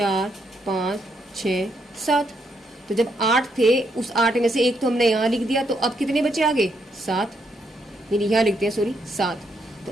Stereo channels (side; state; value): both; normal; correlation 0.76